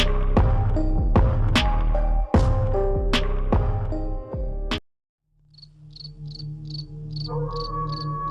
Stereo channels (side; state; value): both; identical; correlation 1.00